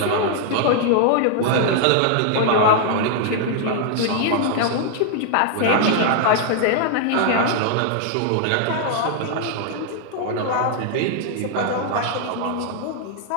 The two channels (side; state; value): both; different; correlation 0.00